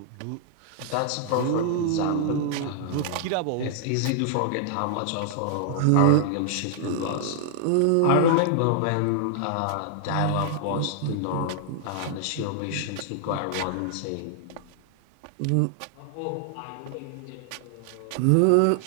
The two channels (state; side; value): different; both; correlation -0.01